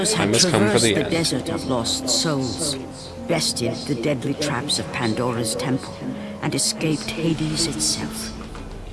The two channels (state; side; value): identical; both; correlation 1.00